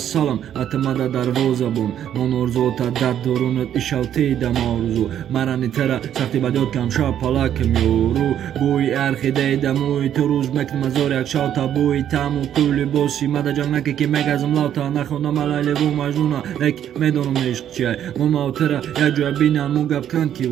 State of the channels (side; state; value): left; quieter; 10.2 dB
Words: اتمده در وزبون من ارزو تا در درونت ایشالتی دم آرزو مرانی تره سختی بدیاد کم شا پلاکم یورو بوی ارخی دیدموی تو روز مکنم از یک شاوتا بوی تمو کولی بوسی مده جنگ نکه که مگزم لاتا نخوندم علیلی و مجنونا لک میدونم عشق چیه من ماوتره یک جوی بینم موگب کن کی